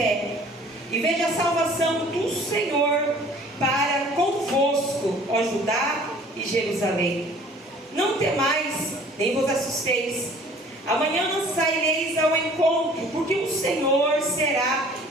e veja a salvação do Senhor para convosco, ó Judá e Jerusalém. Não temais, nem vos assusteis. Amanhã não saireis ao encontro, porque o Senhor será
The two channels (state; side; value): normal; both; correlation 0.51